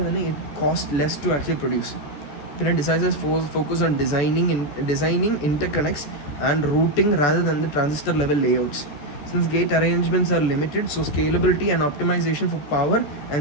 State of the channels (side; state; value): right; late; 14 ms